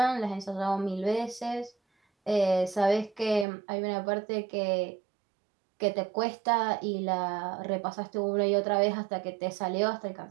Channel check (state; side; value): drops out; left; at 3.5 s